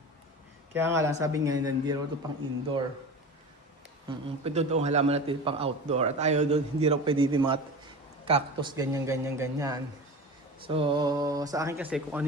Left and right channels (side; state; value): both; normal; correlation 0.32